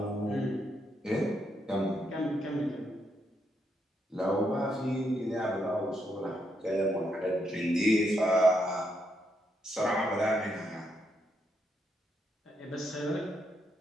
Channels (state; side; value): normal; both; correlation 0.78